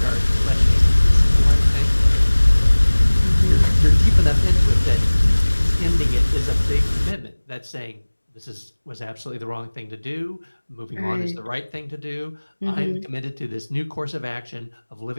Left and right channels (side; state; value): both; inverted; correlation -1.00